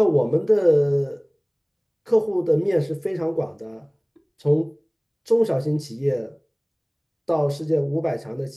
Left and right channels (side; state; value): both; identical; correlation 1.00